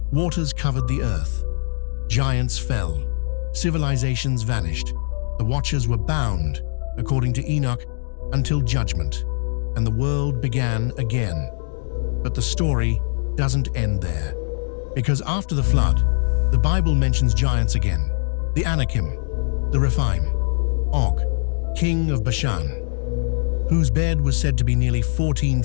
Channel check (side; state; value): right; silent; digital silence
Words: Waters covered the earth. Giants fell. Civilizations vanished. The watchers were bound, according to Enoch, until judgment, and the world began again. But the story doesn't end there, because after the flood, the Bible mentions giants again. The Anakim, the Rephaim, Og, king of Bashan, whose bed was said to be nearly 14